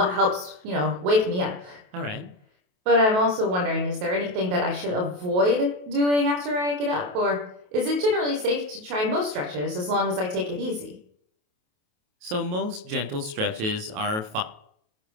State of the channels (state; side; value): late; left; 28 ms